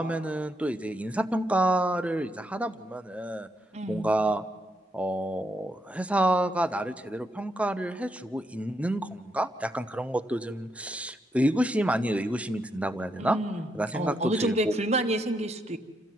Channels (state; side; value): normal; both; correlation 0.79